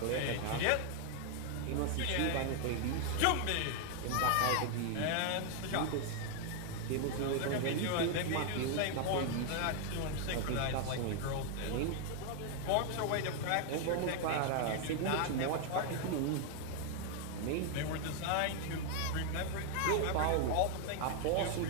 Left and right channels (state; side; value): different; both; correlation 0.01